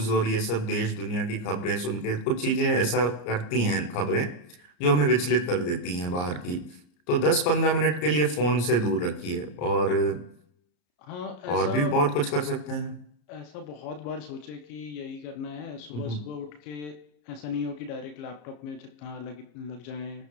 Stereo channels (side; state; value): right; late; 34 ms